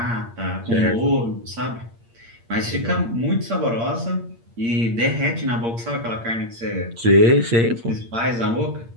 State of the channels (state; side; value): late; left; 8.7 ms